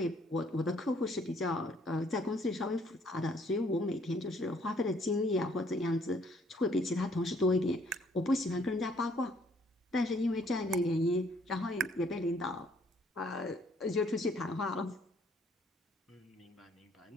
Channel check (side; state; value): both; normal; correlation 0.63